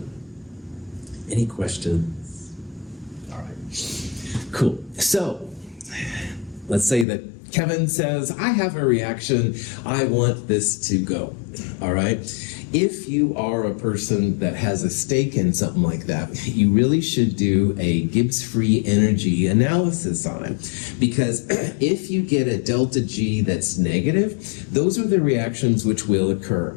Any questions? All right. Cool. So let's say that Kevin says, I have a reaction. I want this to go. All right. If you are a person that has a stake in something like that, you really should do a Gibbs free energy analysis on it. Because if you get a deltaG that's negative, those are the reactions which will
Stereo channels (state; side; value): drops out; right; at 7.1 s